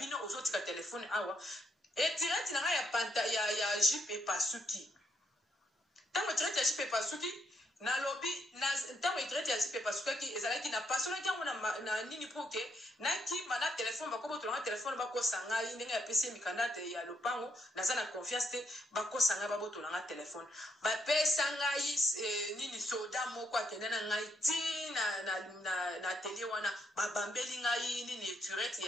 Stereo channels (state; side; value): normal; both; correlation 0.77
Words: ozotika telefone awa etireti na ngai ya panta ya jipe epasuki ntango etireti ya jipe epasuki nalobi ntango etireti ya jipe epasukaki ezalaki na pasolaki yango na nini poke nakima na telefone bakobotolanga telefone bakosa ngai ndenge yapesi ye mikanda te ya lopango naza na confiance te bakosa ngai babotolanga telefone bapesa ngai nini soda moko akende na ngai ti na atelier wana babambeli ngai nini etireti